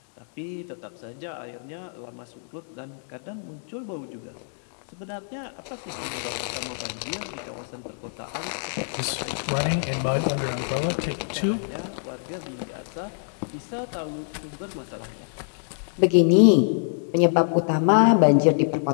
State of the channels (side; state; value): right; silent; digital silence